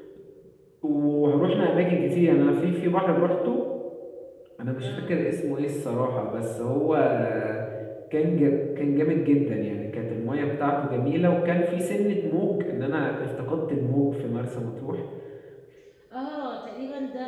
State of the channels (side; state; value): both; identical; correlation 1.00